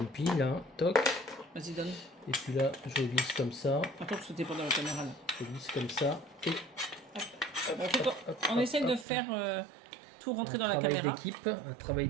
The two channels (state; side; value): drops out; left; at 9.1 s